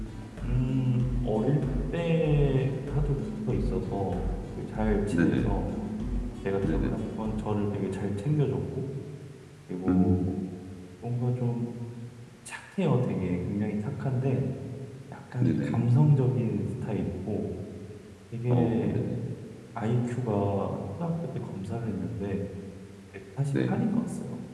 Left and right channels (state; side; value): identical; both; correlation 1.00